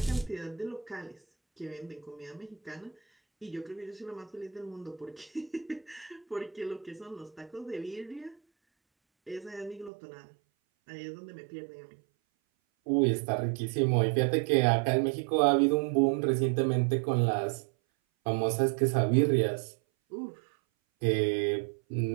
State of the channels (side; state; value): left; drops out; at 9.9 s